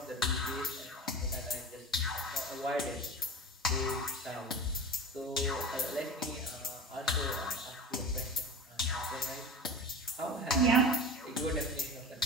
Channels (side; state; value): both; normal; correlation 0.31